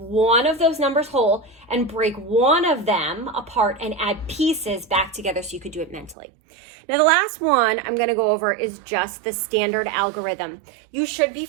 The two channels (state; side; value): drops out; left; at 6.2 s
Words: of those numbers whole and break one of them apart and add pieces back together so you could do it mentally. Now the last one I'm going to go over is just the standard algorithm. You should be